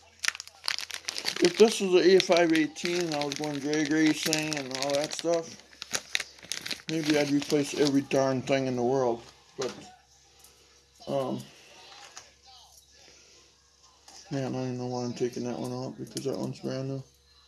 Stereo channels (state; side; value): identical; both; correlation 1.00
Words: if this was an A518 and I was going drag racing and all that stuff, maybe I'd replace every darn thing in the world. But, man, I don't know why I'm taking that one out because that one's brand new.